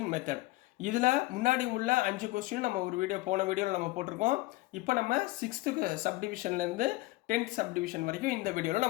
method. இதில் முன்னாடி உள்ள 5 கொஸ்டின் நம்ம ஒரு போன வீடியோவில் நம்ம போட்டிருக்கோம். இப்போ நம்ம 6th சப்டிவிஷன்லேருந்து 10th சப்டிவிஷன் வரைக்கும் இந்த வீடியோவில்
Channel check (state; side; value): quieter; right; 19.9 dB